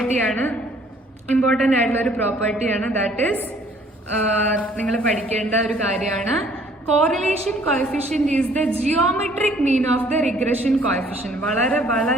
ഇമ്പോർട്ടന്റ് ആയിട്ടുള്ള ഒരു പ്രോപ്പർട്ടിയാണ്. ദാറ്റ് ഈസ് നിങ്ങൾ പഠിക്കേണ്ട ഒരു കാര്യമാണ്. Correlation coefficient is the geometric mean of the regression coefficient. വളരെ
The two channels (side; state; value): both; normal; correlation 0.59